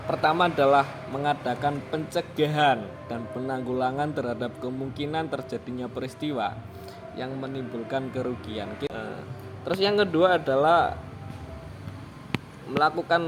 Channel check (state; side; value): identical; both; correlation 1.00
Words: pertama adalah mengadakan pencegahan dan penanggulangan terhadap kemungkinan terjadinya peristiwa yang menimbulkan kerugian. Terus yang kedua adalah